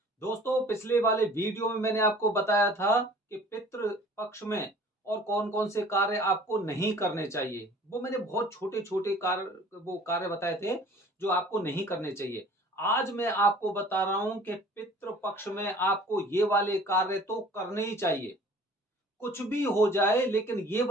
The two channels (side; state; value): both; normal; correlation 0.49